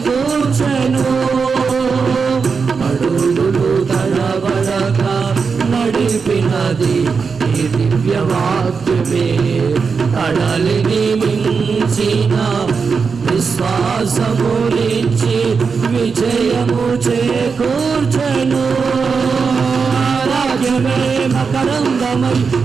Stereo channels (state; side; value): quieter; left; 5.3 dB